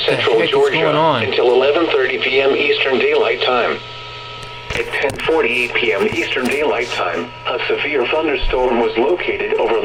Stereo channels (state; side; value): identical; both; correlation 1.00